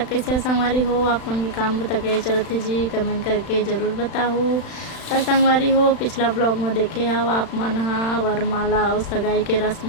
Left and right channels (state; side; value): late; right; 35 ms